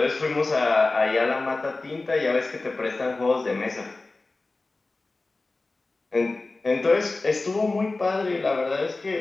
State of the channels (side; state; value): right; quieter; 3.3 dB